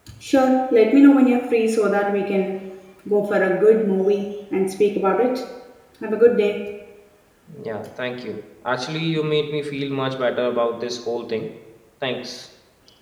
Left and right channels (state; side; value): identical; both; correlation 1.00